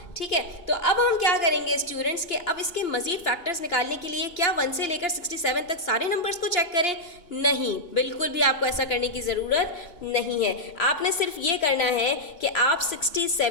ठीक है, तो अब हम क्या करेंगे स्टूडेंट्स के, अब इसके मजीद फैक्टर्स निकालने के लिए क्या 1 से लेकर 67 तक सारे नंबर्स को चेक करें? नहीं, बिल्कुल भी आपको ऐसा करने की ज़रूरत नहीं है। आपने सिर्फ ये करना है कि आप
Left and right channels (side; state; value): right; late; 2.9 ms